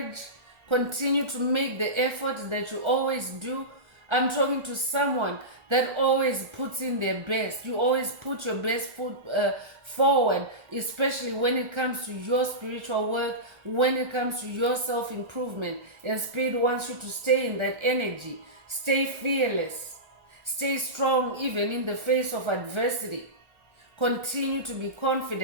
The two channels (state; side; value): late; left; 1.3 ms